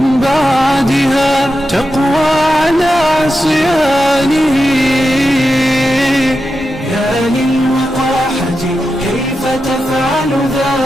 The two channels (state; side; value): normal; both; correlation 0.89